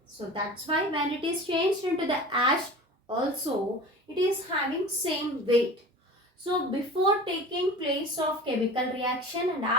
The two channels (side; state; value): both; normal; correlation 0.36